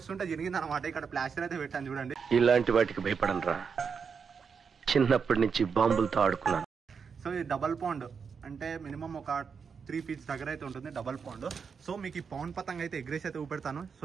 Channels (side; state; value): left; quieter; 6.0 dB